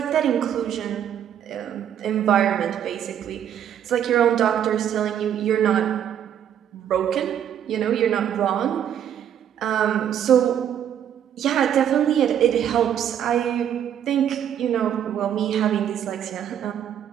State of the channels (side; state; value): left; quieter; 9.6 dB